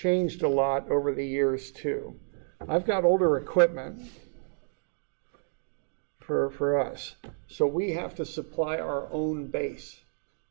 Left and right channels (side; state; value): left; silent; digital silence